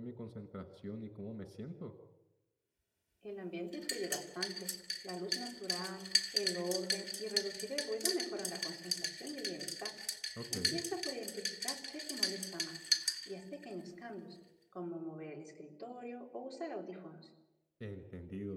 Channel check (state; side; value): identical; both; correlation 1.00